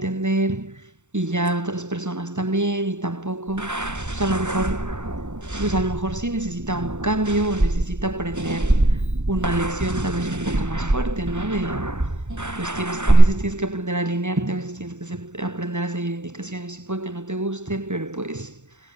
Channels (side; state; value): left; late; 0.84 ms